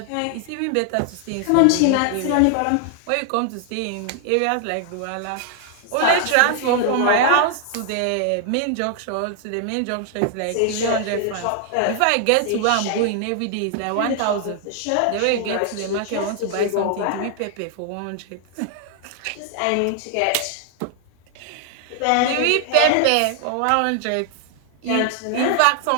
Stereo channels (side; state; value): both; different; correlation 0.00